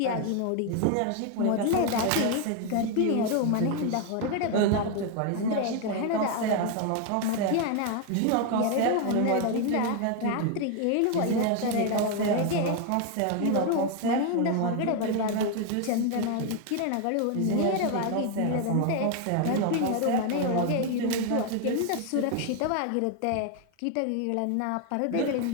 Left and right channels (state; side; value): different; both; correlation 0.01